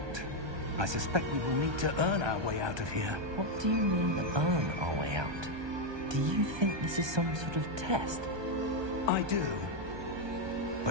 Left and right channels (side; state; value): left; late; 1.2 ms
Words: I suspect we will need to earn our way out of here. What do you mean, earn our way out? Do you think this is some sort of test? I do.